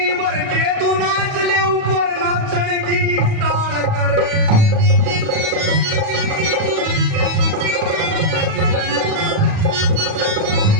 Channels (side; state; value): left; late; 37 ms